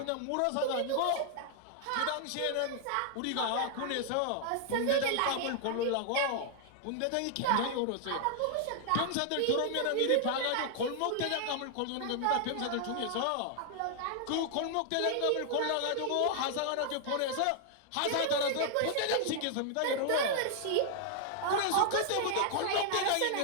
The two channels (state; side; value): different; both; correlation 0.00